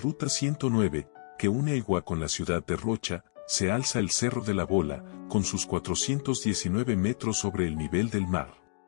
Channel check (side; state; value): right; silent; digital silence